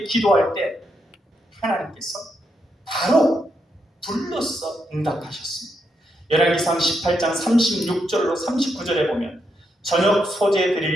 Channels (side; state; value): both; normal; correlation 0.81